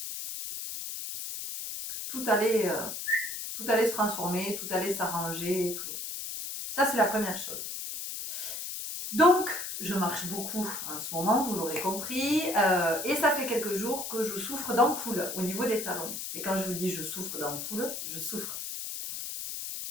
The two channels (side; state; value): left; noise; hiss, 6 dB below the sound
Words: tout allait se transformer, tout allait s'arranger. Tout. Ça, c'est la première chose. Donc, je marche beaucoup en ce moment, vous l'aurez compris, et ça fait quelques jours que je souffre d'ampoules au niveau des talons. Et quand je vous dis je souffre d'ampoules, je souffre.